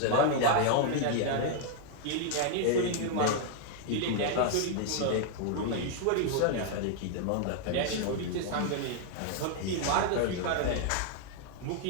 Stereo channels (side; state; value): both; different; correlation 0.00